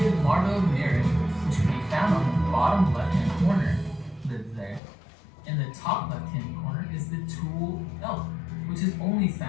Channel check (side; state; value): right; drops out; at 4.8 s